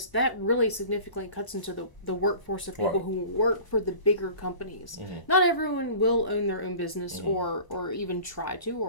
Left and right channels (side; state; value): right; late; 1.0 ms